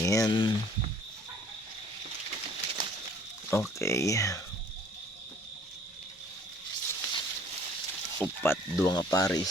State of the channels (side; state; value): both; normal; correlation 0.56